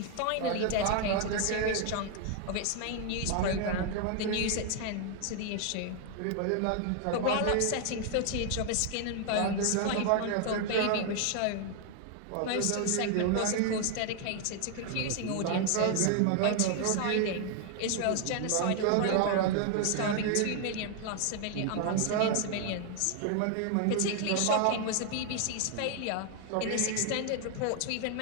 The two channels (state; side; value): different; both; correlation 0.00